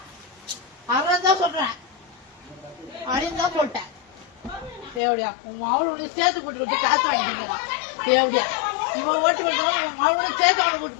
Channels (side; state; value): right; drops out; at 5.0 s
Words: அதான் சொல்றேன் அப்படின்னு தான் சொல்லிட்டேன். தேவடியா உன் மாவளோட சேர்த்து போட்டு காசு வாங்கிக்கிறா தேவடியா இவன் ஓட்டி போட்டவன் உன் மாவளோட சேர்த்து அவனை போட்டு